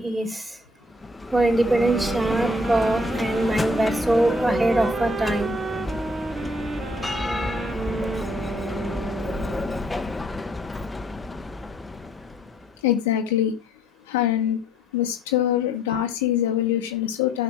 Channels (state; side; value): normal; both; correlation 0.62